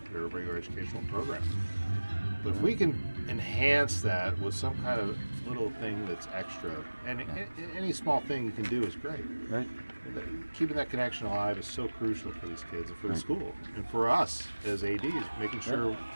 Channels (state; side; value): inverted; both; correlation -1.00